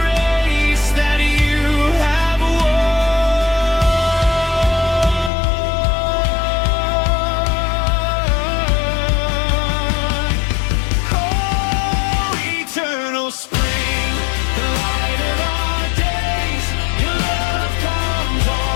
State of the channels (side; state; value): right; drops out; at 5.3 s